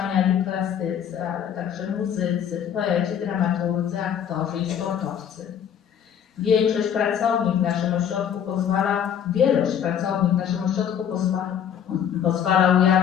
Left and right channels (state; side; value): quieter; right; 8.8 dB